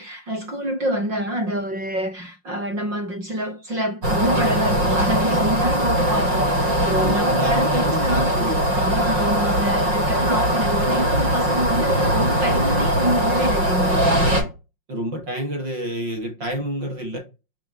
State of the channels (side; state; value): left; late; 5.6 ms